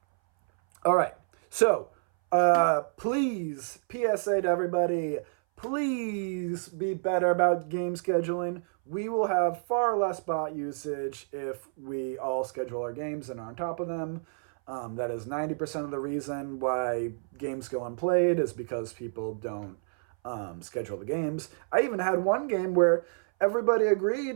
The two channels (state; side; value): silent; left; 59 dB below the other